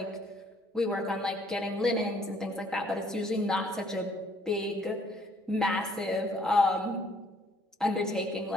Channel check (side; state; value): both; normal; correlation 0.63